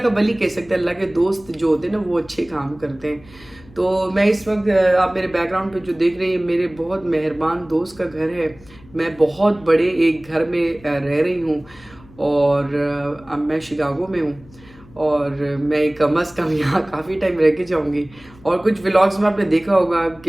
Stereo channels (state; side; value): noise; left; hum, 24 dB below the sound